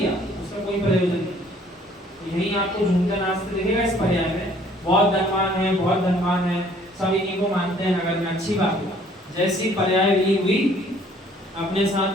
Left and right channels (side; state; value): both; normal; correlation 0.58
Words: उसका कोई प्रयोजन नहीं। यही आपको झूमते नाचते दिखेगा इस पर्याय में। बहुत धनवान है, बहुत धनवान है, सब इन्हीं को मानते हैं नगर में, अच्छी बात है। जैसी पर्याय विलीन हुई, अपने